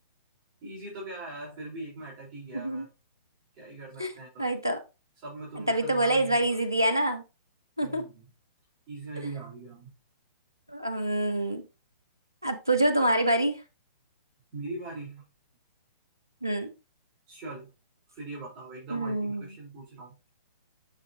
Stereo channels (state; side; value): inverted; both; correlation -0.75